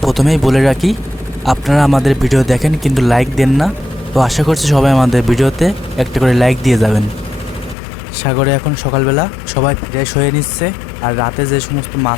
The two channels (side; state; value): right; drops out; at 7.8 s